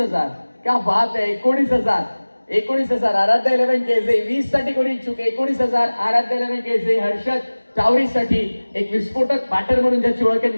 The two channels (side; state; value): both; inverted; correlation -1.00